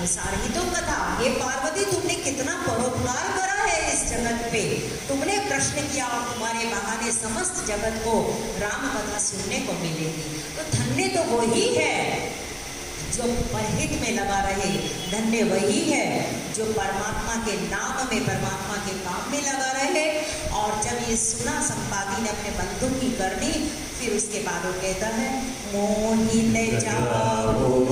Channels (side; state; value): both; identical; correlation 1.00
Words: ही तो कथा। ये पार्वती तुमने कितना परोपकार करा है इस जगत पे, तुमने प्रश्न किया और तुम्हारे बहाने समस्त जगत को राम कथा सुनने को मिलेगी। तो धन्य तो वही है जो परहित में लगा रहे, धन्य वही है जो परमात्मा के नाम में, परमात्मा के काम में लगा रहे। और जब ये सुना संपाति ने अपने बंधु की करनी, फिर उसके बाद वो कहता है, मोहित